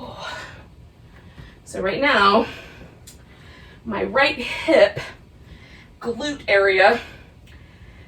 So right now, my right hip glute area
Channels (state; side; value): identical; both; correlation 1.00